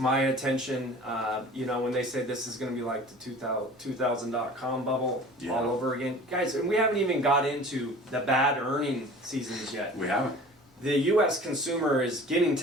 attention. When they say this is going to be like the 2000.com bubble all over again. Guys, and we haven't even got into the bad earning seasons yet. We haven't. The U.S. consumer is getting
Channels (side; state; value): both; normal; correlation 0.43